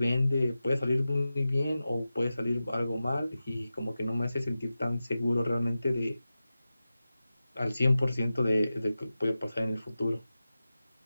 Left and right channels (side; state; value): both; inverted; correlation -0.94